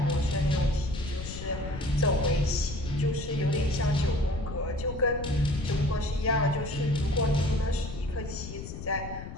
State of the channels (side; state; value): left; noise; rumble, 9 dB below the sound